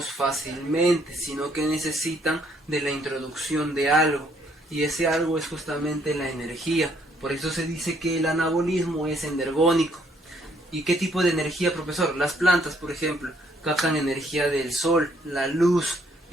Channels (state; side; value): normal; both; correlation 0.67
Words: fácilmente, sino que necesitan de la introducción de algo, y ese algo es justamente la energía. Por eso se dice que el anabolismo es energónico. ¿Y qué tipo de energía, profesor? Las plantas, por ejemplo, captan energía del sol, la luz.